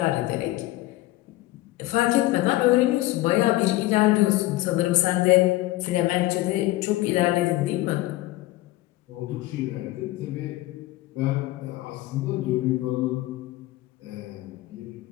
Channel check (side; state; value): right; quieter; 17.8 dB